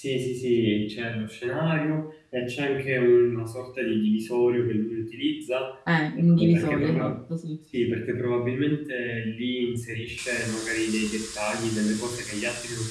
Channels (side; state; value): both; identical; correlation 1.00